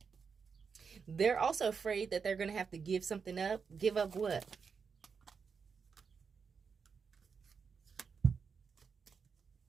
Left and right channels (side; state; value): left; quieter; 5.8 dB